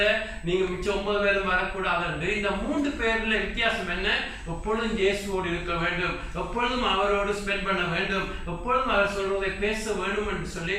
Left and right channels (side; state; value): both; identical; correlation 1.00